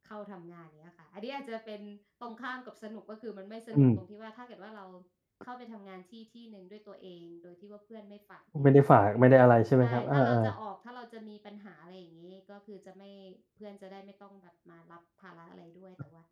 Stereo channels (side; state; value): both; identical; correlation 1.00